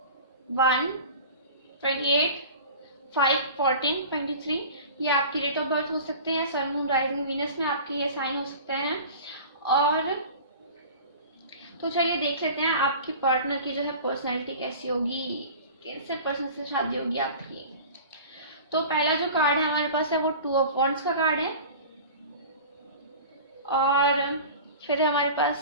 ये आपकी डेट ऑफ बर्थ हो सकते हैं। सन मून राइजिंग वीनस में आपके ये साइन हो सकते हैं। और तो चलिए देख लेते हैं आपकी पार्टनर की जो है पर्सनैलिटी कैसी होगी, कैसे पर्सन से शादी होगी आपकी। तो पहला जो कार्ड है हमारे पास है वो 2 ऑफ वॉन्ड्स का कार्ड है, और फिर है हमारे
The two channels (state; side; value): inverted; both; correlation -0.38